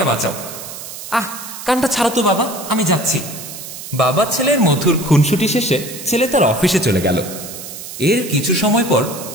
বাঁচাও। কানটা ছাড়ো তো বাবা, আমি যাচ্ছি। বাবা ছেলের মধুর খুনসুটি শেষে ছেলে তার অফিসে চলে গেল। এর কিছু সময় পর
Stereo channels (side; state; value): right; noise; hiss, 11 dB below the sound